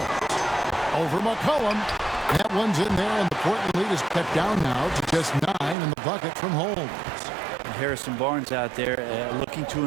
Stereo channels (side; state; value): left; drops out; at 5.8 s